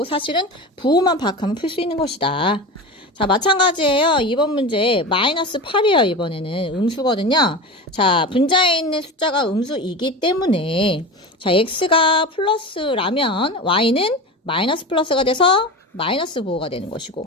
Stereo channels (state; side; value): normal; both; correlation 0.27